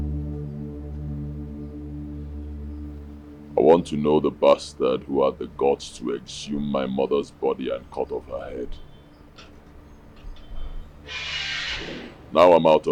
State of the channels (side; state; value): both; identical; correlation 1.00